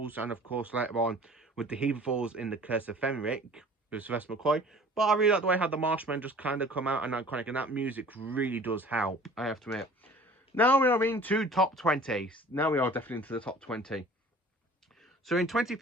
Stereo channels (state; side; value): normal; both; correlation 0.47